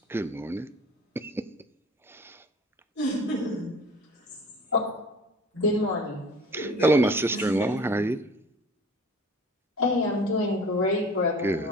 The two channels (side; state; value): both; normal; correlation 0.44